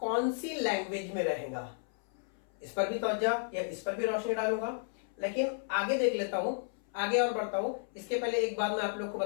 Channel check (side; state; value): right; silent; 56 dB below the other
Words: सी लैंग्वेज में रहेगा? इस पर भी तवज्जो या इस पर भी रोशनी डालूंगा, लेकिन आगे देख लेता हूं, आगे और बढ़ता हूं। इसके पहले एक बात मैं आप लोग को